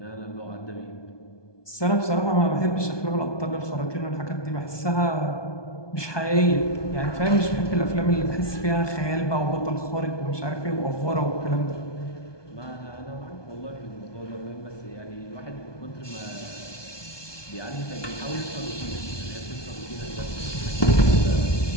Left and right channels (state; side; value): late; right; 1.2 ms